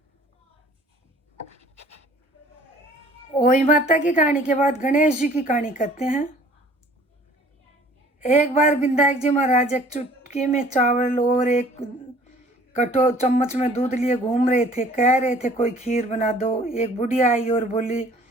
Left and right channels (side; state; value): both; normal; correlation 0.53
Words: ओई माता की कहानी के बाद गणेश जी की कहानी कहते हैं। एक बार विनायक जी महाराज एक चुटकी में चावल और एक चम्मच में दूध लिए घूम रहे थे। कह रहे थे कोई खीर बना दो। एक बुढ़िया आई और बोली